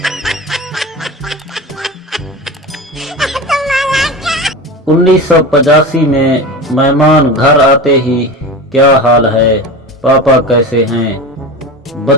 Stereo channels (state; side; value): normal; both; correlation 0.28